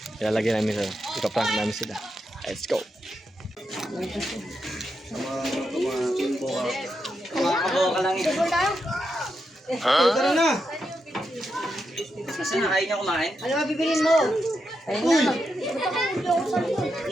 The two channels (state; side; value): normal; both; correlation 0.85